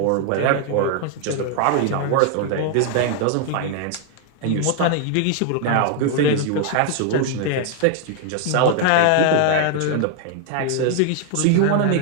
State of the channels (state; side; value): different; both; correlation 0.00